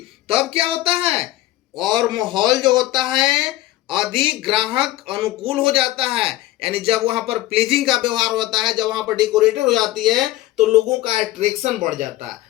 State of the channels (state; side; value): quieter; right; 16.3 dB